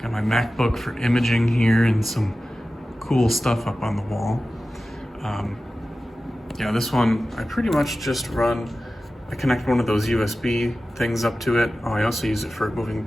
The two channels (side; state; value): both; normal; correlation 0.95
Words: Got my MacBook for imaging here and some cool stuff up on the wall. Yeah, this one, I pretty much just I connect one of those USB things up to it. Oh, I also use it for moving